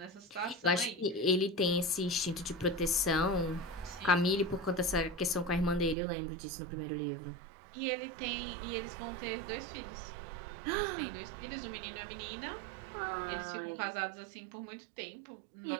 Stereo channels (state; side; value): drops out; left; at 6.0 s